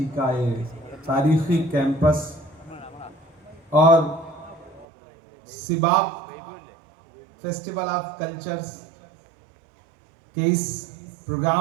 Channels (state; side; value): drops out; left; at 4.9 s